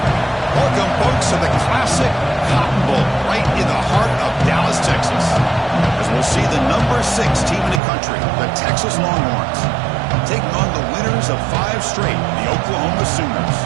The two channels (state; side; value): drops out; left; at 7.8 s